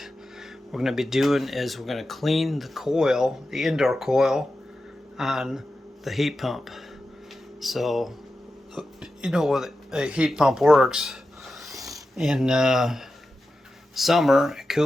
we're going to be doing is we're going to clean the coil, the indoor coil on the heat pump. So you know what a heat pump works. In summer it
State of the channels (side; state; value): both; normal; correlation 0.92